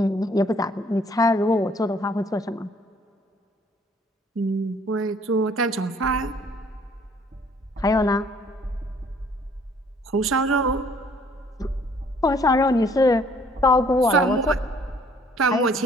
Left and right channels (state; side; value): normal; both; correlation 0.60